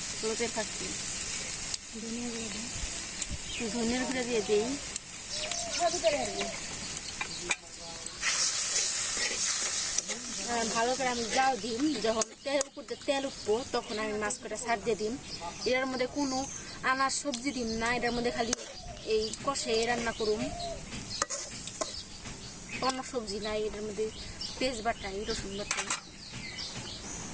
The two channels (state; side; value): identical; both; correlation 1.00